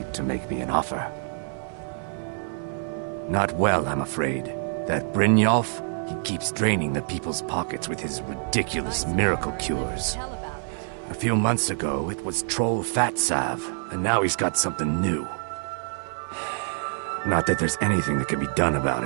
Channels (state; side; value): silent; left; 57 dB below the other